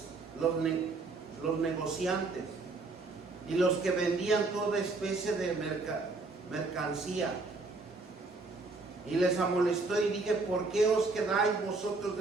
los negociantes y los que vendían toda especie de mercancía. Y les amonestó y dije, ¿por qué os quedáis vosotros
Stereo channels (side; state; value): left; quieter; 3.7 dB